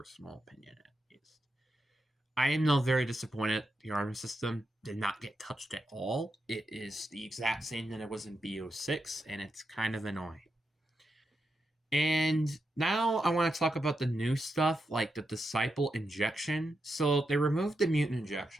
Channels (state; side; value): normal; both; correlation 0.86